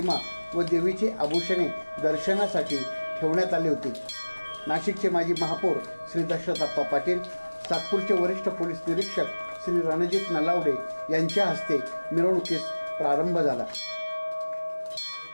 व देवीची आभूषणे दर्शनासाठी ठेवण्यात आली होती। नाशिकचे माजी महापौर श्री दशरथ पाटील, सातपूरचे वरिष्ठ पोलीस निरीक्षक श्री रणजित नलावडे यांच्या हस्ते मिरवणुकीस प्रारंभ झाला।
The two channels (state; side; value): inverted; both; correlation -1.00